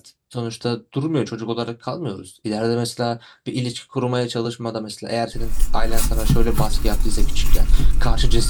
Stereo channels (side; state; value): both; identical; correlation 1.00